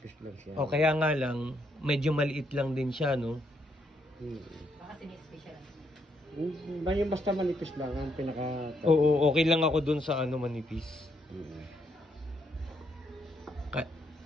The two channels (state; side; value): normal; both; correlation 0.75